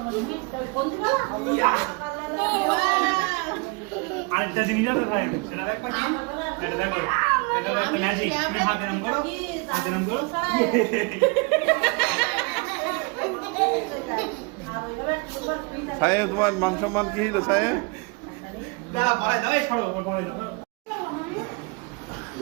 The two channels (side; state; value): left; quieter; 29.7 dB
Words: হবে বন্ধুরা আরেকটা জিনিস আছে ভাই, সেটা দেখবা কি? এটা দেখো, এটা একটা ম্যাজিক। তুমি হাত এরম করো, হাত এরম করো। সাহেব তোমার মান সম্মান কি হলো সাহেব? দাঁড়া, পড়াই দাও, এই পড়ো, পড়াই দাও।